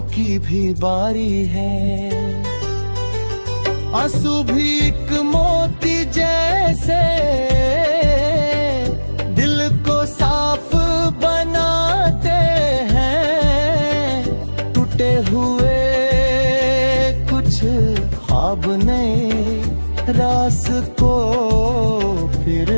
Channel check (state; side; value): inverted; both; correlation -1.00